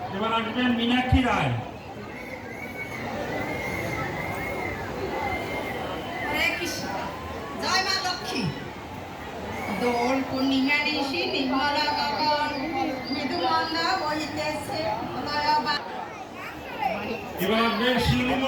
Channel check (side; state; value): both; identical; correlation 1.00